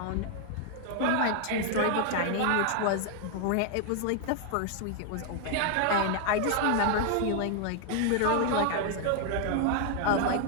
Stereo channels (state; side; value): different; both; correlation 0.00